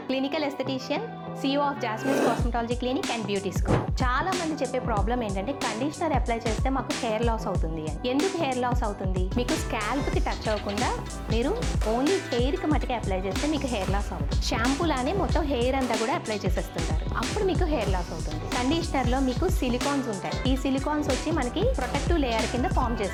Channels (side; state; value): both; identical; correlation 1.00